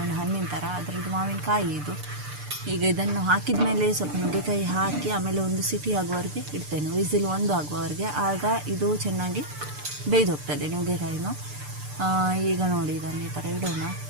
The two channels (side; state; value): left; late; 6.8 ms